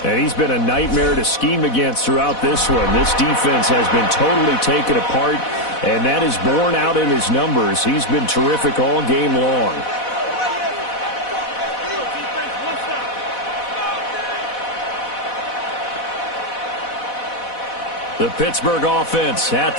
And he's been a nightmare to scheme against throughout this one. This defense has been totally taken apart, and that is borne out in his numbers. He's been terrific all game long. The Pittsburgh offense at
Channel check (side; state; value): right; late; 4.1 ms